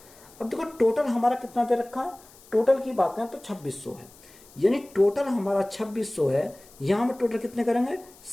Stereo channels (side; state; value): left; noise; hiss, 24 dB below the sound